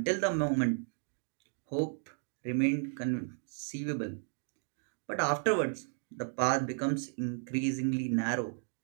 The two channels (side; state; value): left; silent; 55 dB below the other